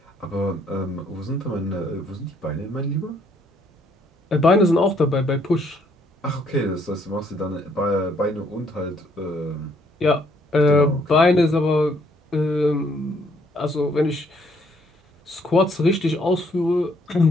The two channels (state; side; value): normal; both; correlation 0.67